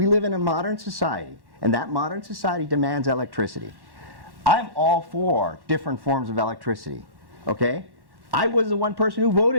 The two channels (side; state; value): left; late; 1.1 ms